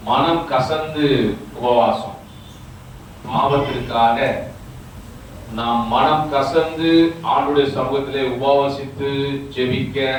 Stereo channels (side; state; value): both; identical; correlation 1.00